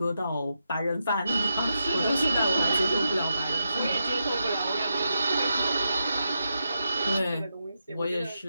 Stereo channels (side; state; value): both; inverted; correlation -0.85